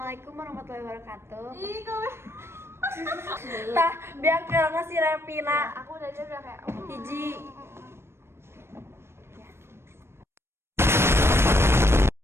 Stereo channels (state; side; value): late; left; 0.12 ms